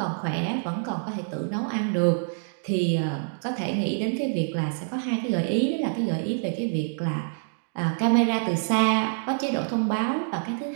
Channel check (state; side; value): silent; left; digital silence